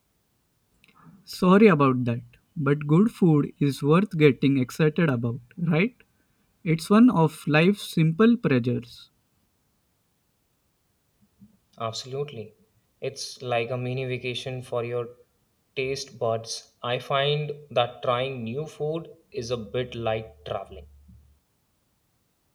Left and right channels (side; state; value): both; identical; correlation 1.00